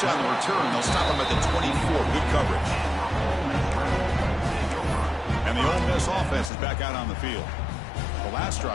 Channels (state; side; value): drops out; right; at 6.5 s